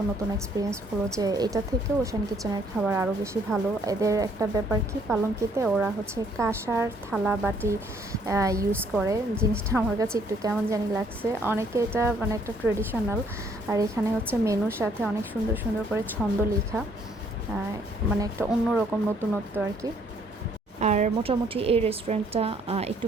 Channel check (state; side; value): normal; both; correlation 0.65